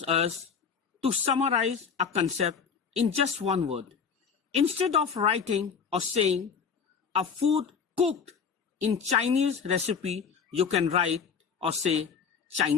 us to summarize a concept in just one word. Instead of writing or saying a food cooked in Chinese recipe, you can write or say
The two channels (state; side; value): quieter; right; 6.3 dB